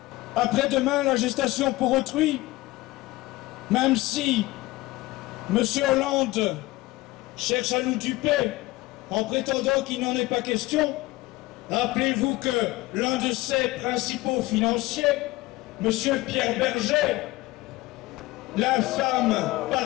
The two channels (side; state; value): right; quieter; 19.5 dB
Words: Après-demain, la gestation pour autrui. Même si M. Hollande cherche à nous duper en prétendant qu'il n'en est pas question, rappelez-vous que l'un de ses principaux financiers, M. Pierre Berger, l'infâme